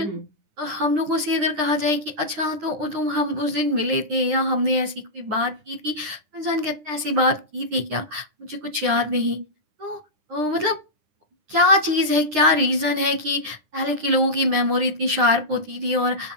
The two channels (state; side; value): late; left; 9.9 ms